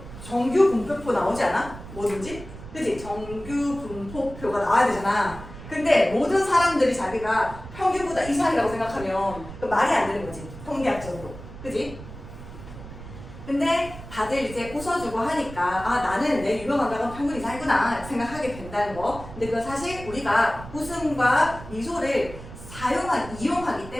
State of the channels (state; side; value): noise; right; rumble, 14 dB below the sound